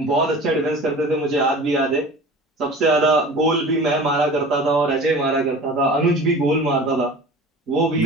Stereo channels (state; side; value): normal; both; correlation 0.38